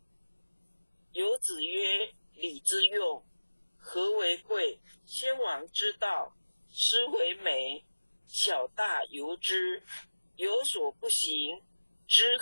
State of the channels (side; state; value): both; inverted; correlation -1.00